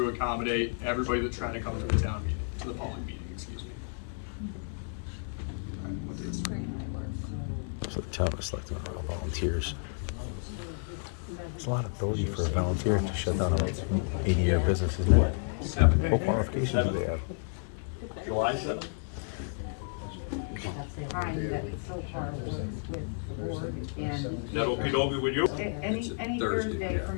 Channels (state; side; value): silent; right; 57 dB below the other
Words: accommodate everybody that's trying to come to the town meeting, to the public meeting, excuse me. So the town is selecting all volunteers. There's a lot of ability for a volunteer to shut down an 80-year business, isn't it? What qualifications do they have? July 7th? Time that so far works with the board and. Is that okey-dokey with you? Any Thursday